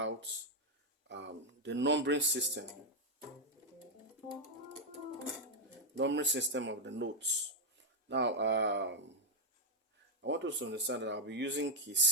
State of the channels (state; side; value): normal; both; correlation -0.02